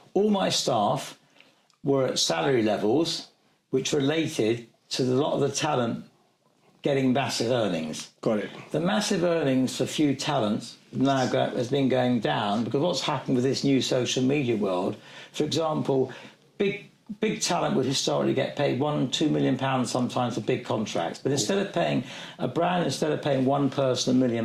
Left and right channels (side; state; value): both; identical; correlation 1.00